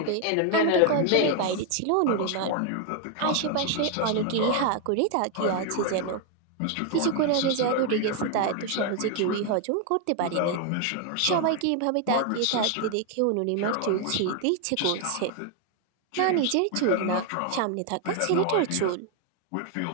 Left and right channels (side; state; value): both; different; correlation 0.00